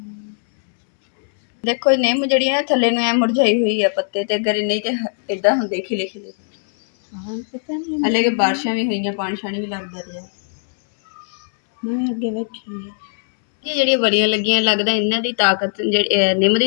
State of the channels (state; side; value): silent; right; 66 dB below the other